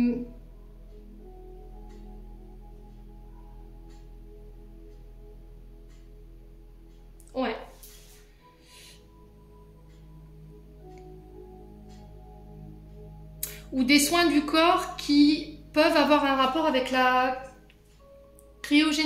Ouais. Ou des soins du corps qui peuvent avoir un rapport avec la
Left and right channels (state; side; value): identical; both; correlation 1.00